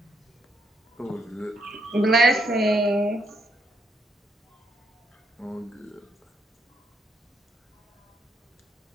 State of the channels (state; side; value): normal; both; correlation 0.76